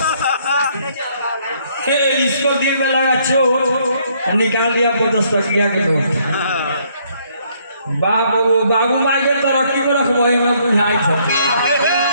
इसको दिल में लगा चोट निकाल दिया 50 टकिया के नोट। बाबू माई के तरक्की में रखबो में बुझाई छ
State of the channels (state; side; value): inverted; both; correlation -0.67